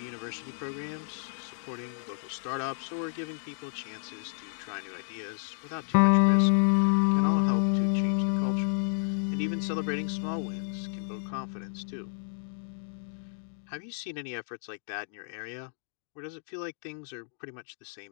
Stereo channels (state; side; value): silent; right; digital silence